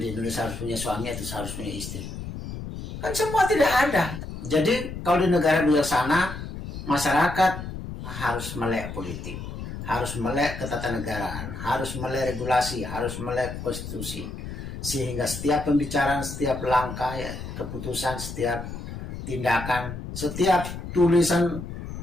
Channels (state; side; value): noise; left; rumble, 8 dB below the sound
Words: Indonesia harus punya suami atau harus punya istri? Kan semua tidak ada. Jadi kalau di negara bijaksana, masyarakat harus melek politik, harus melek ketatanegaraan, harus melek regulasi, harus melek konstitusi. Sehingga setiap pembicaraan, setiap langkah, ya, keputusan, setiap tindakan, setiap tulisan,